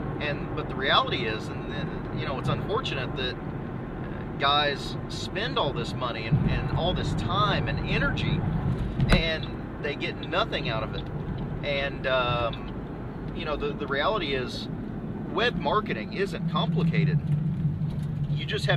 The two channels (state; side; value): identical; both; correlation 1.00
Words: But the reality is, and you know, it's unfortunate that guys spend all this money and all this time and energy, and they get nothing out of it. And you know, the reality is, web marketing isn't complicated. You just